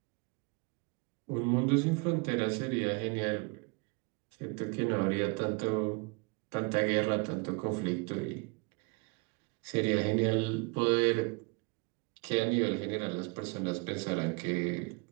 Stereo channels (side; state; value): left; quieter; 30.0 dB